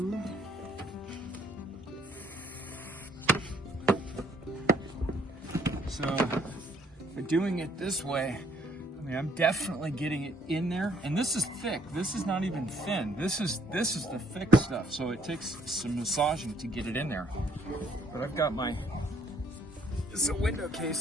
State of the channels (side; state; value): both; normal; correlation 0.64